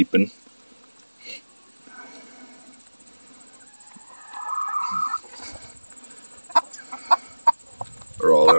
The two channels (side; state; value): both; inverted; correlation -1.00